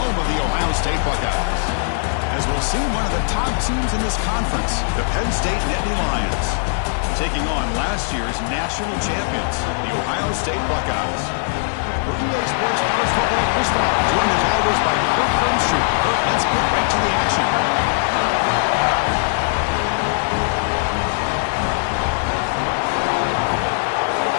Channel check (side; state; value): right; silent; digital silence